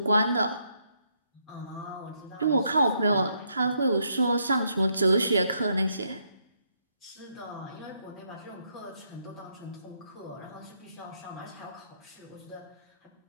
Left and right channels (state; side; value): inverted; both; correlation -0.75